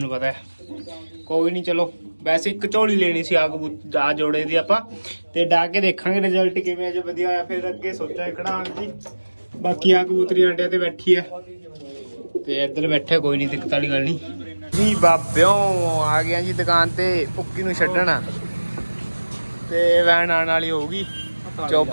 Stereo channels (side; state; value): both; inverted; correlation -1.00